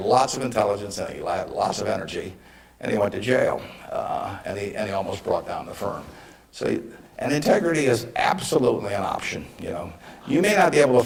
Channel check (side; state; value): both; identical; correlation 1.00